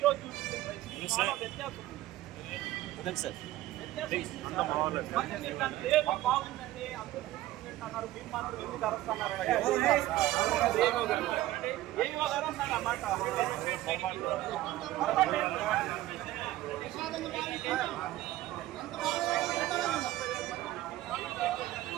రోజు చూపించిన రైస్ చాలా వ్యత్యాసం ఉంది. మళ్ళీ మీరు దాన్ని లేదు బాగుందండి అందరూ చూపించారు, మీరు మాత్రం ఎందుకు అరుస్తున్నారంటే ఏవో గారు అన్నాడు అన్నమాట.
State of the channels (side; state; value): left; quieter; 15.5 dB